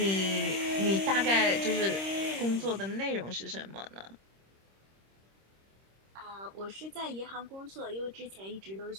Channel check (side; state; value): left; late; 26 ms